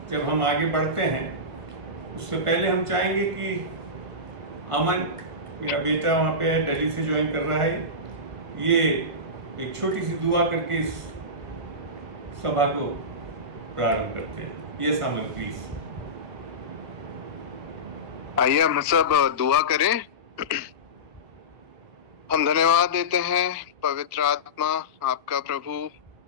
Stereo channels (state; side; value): late; left; 1.8 ms